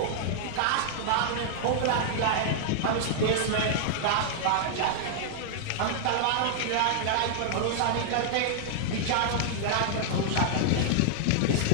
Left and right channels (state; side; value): different; both; correlation -0.01